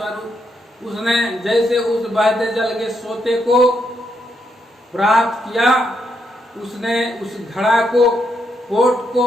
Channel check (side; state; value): both; normal; correlation 0.79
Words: उसने जैसे उस बहते जल के सोते को प्राप्त किया, उसने उस घड़ा को, पोट